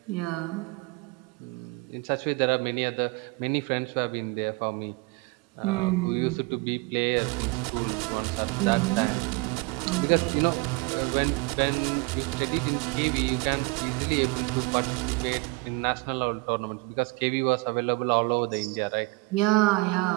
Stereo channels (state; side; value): quieter; left; 26.1 dB